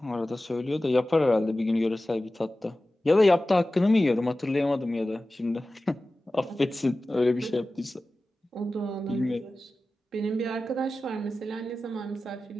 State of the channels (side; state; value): both; normal; correlation 0.95